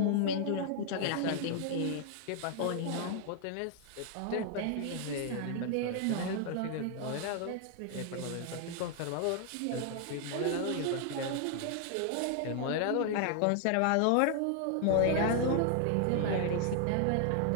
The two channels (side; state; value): both; different; correlation 0.00